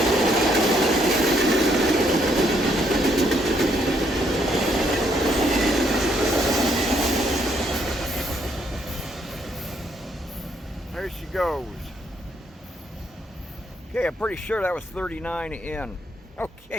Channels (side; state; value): both; normal; correlation 0.72